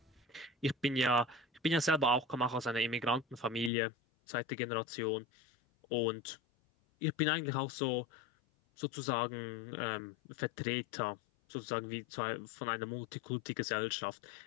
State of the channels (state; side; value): drops out; right; at 3.7 s